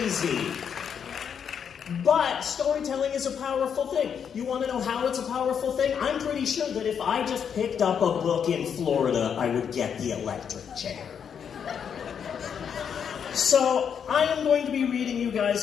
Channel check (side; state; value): right; quieter; 7.6 dB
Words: But storytelling is a powerful thing. You want to know how it's a powerful thing? I'm pretty sure that if I just picked up a book in Florida, I would get the electric chair. So I am going to be reading you guys